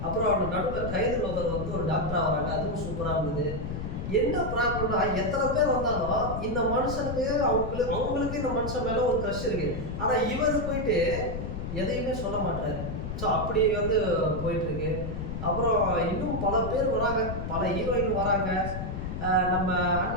அப்புறம் அவங்க நடுவில் கைது லோகர் வந்து ஒரு டாக்டராக வராங்க, அதுவும் சூப்பராக இருந்தது. என்ன ப்ராப்ளம்னா, எத்தனை பேர் வந்தாலும் இந்த மனுஷனுக்கு அவங்களுக்கு இந்த மனுஷன் மேலே ஒரு க்ரஷ் இருக்கு. ஆனால் இவர் போயிட்டு எதையுமே சொல்ல மாட்டாரு. ஸோ அப்படி வந்து போயிட்டு இருக்கு. அப்புறம் இன்னும் பல பேர் வராங்க, பல ஹீரோயின் வராங்க. நம்ம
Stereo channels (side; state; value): left; noise; rumble, 5 dB below the sound